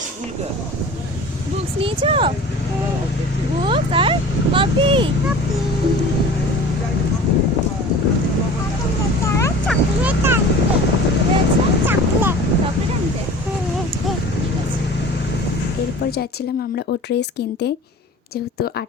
स्कूल का? বুকস নিয়েছো? Books are copy. চকলেট আনতে। এরপর যাচ্ছিলাম আমরা ও ড্রেস কিনতে, যেহেতু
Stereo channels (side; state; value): both; normal; correlation 0.40